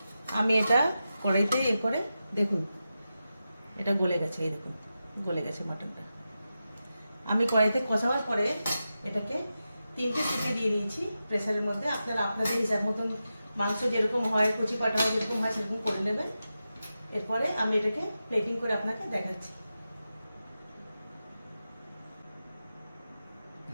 আমি এটা কড়াইতে করে দেখুন এটা গলে গেছে, এই দেখুন গলে গেছে মাটনটা। আমি কড়াইতে কষাবার পরে এটাকে 3টে সিটি দিয়ে দিয়েছি প্রেসারের মধ্যে। আপনারা আপনাদের হিসাব মতন মাংস যেরকম হয়, কুচি পাটা হয় যেরকম হয় সেরকম করে নেবেন। এরপরে আমি এটাকে প্লেটিং করে আপনাকে দেখাচ্ছি।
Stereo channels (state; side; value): inverted; both; correlation -0.91